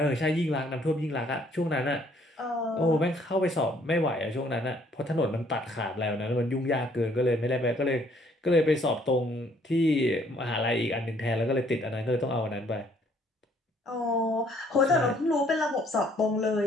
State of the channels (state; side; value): normal; both; correlation 0.63